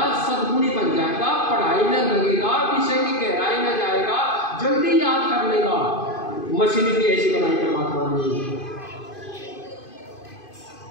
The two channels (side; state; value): right; late; 2.5 ms